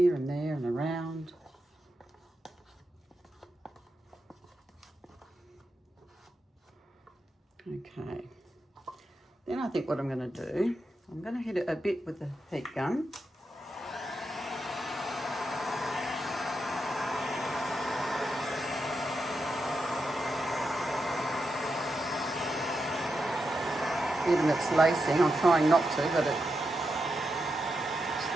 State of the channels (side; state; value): both; normal; correlation 0.86